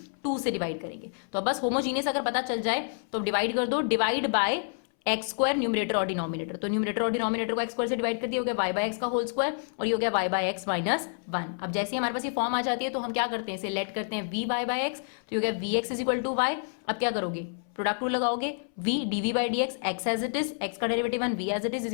2 से डिवाइड करेंगे। तो अब बस होमोजीनियस अगर पता चल जाए तो डिवाइड कर दो, divide by x square numerator और डिनोमिनेटर, तो न्यूमरेटर और डिनोमिनेटर को एक्स स्क्वायर से डिवाइड कर दिया, हो गया y बाय एक्स का होल स्क्वायर और ये हो गया y बाय एक्स माइनस 1। अब जैसे ही हमारे पास ये फॉर्म आ जाती है तो हम क्या करते हैं, इसे लेट करते हैं v बाय एक्स, तो ये हो गया vx is equal to y। अब क्या करोगे, प्रोडक्ट रूल लगाओगे, v dv by dx, x as it is, x का derivative 1 v as it is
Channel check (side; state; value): right; silent; 59 dB below the other